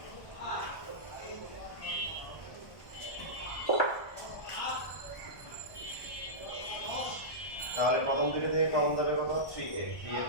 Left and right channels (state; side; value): late; right; 1.3 ms